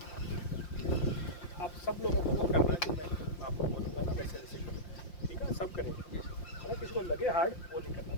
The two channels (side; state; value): right; late; 5.7 ms